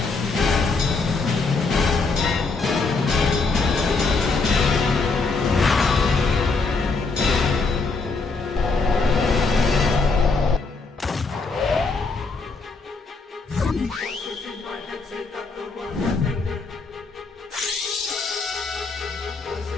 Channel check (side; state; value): right; quieter; 4.0 dB